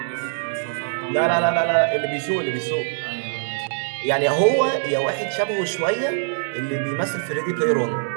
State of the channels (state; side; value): silent; left; digital silence